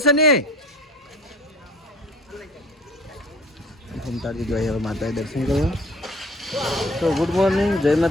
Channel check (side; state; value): both; normal; correlation 0.48